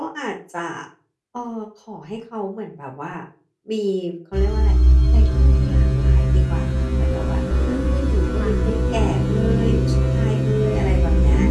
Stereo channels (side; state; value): both; identical; correlation 1.00